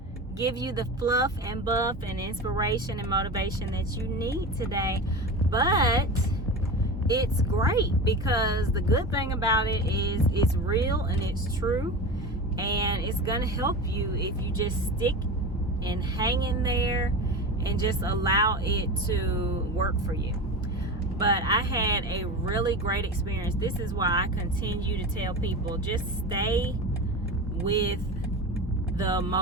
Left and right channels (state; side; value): normal; both; correlation 0.27